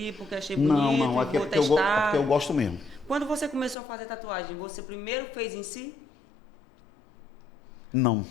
porque achei bonito, Não, aqui vou é testar. porque eu gosto mesmo. Quando você começou a fazer tatuagem, você primeiro fez em si? Não.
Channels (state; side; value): drops out; right; at 3.8 s